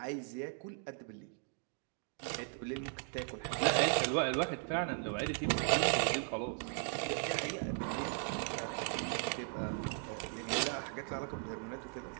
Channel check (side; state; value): left; silent; 53 dB below the other